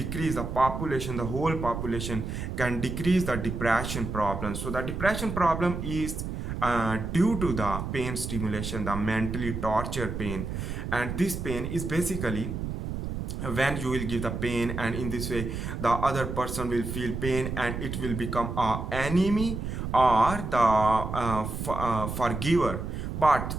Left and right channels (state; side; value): noise; right; rumble, 5 dB below the sound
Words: the population, the whole population can decrease the depression problem. So the depression problem is due to the pain stimulation, the mentally torture pain. And this pain is basically when you will give the pain, and in this way the other person will feel pain, and it will become a enemy or the forgiver. But